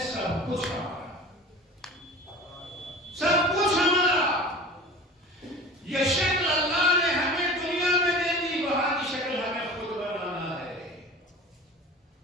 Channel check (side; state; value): both; normal; correlation 0.38